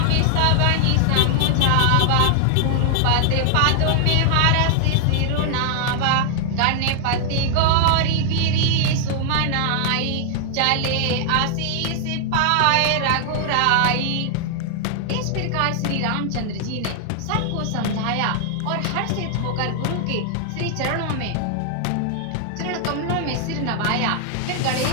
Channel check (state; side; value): different; both; correlation 0.00